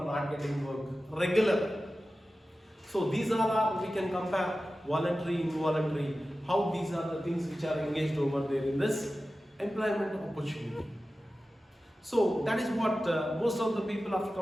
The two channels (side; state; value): both; normal; correlation 0.95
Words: not getting work regular. So these are we can compare voluntary, involuntary, how these are the things which are engaged over there in this employment opportunity. So that is what most of the people after